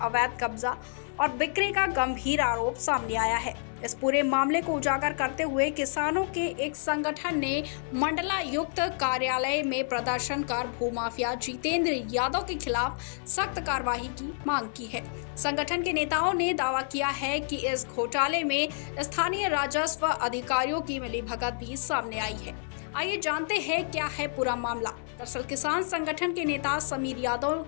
कब्जा और बिक्री का गंभीर आरोप सामने आया है। इस पूरे मामले को उजागर करते हुए किसानों के एक संगठन ने मंडलायुक्त कार्यालय में प्रदर्शन कर भूमाफिया जितेंद्र यादव के खिलाफ सख्त कार्रवाई की मांग की है। संगठन के नेताओं ने दावा किया है कि इस घोटाले में स्थानीय राजस्व अधिकारियों की मिलीभगत भी सामने आई है। आइए जानते हैं क्या है पूरा मामला। दरअसल किसान संगठन के नेता समीर यादव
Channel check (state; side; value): silent; right; 59 dB below the other